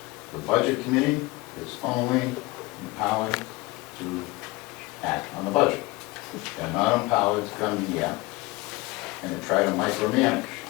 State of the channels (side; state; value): right; quieter; 22.4 dB